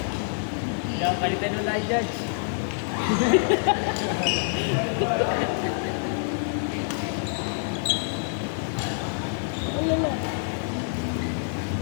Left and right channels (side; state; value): right; silent; digital silence